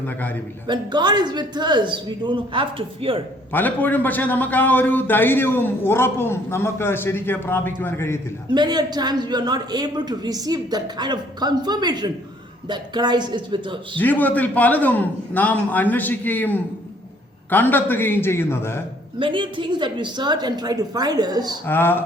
കാര്യമില്ല. When God is with us, we don't have to fear. പലപ്പോഴും പക്ഷേ നമുക്ക് ആ ഒരു ധൈര്യവും ഉറപ്പും നമുക്ക് ശരിക്കും പ്രാപിക്കുവാൻ കഴിയത്തില്ല. Many a times we are not able to receive that kind of confirmation that Christ is with us. ജീവിതത്തിൽ പലതും നാം അന്വേഷിക്കുകയും കണ്ടെത്തുകയും ചെയ്യുന്നത് Many things that we search and try to find us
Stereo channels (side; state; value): both; normal; correlation 0.61